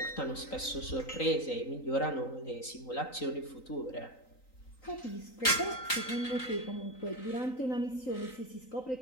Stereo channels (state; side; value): late; right; 3.9 ms